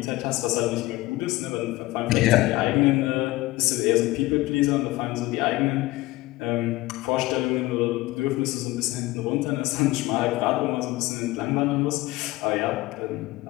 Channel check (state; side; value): quieter; right; 18.9 dB